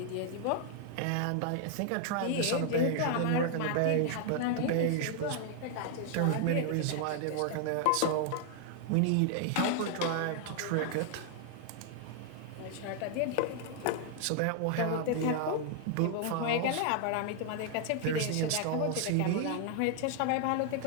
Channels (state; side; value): different; both; correlation 0.00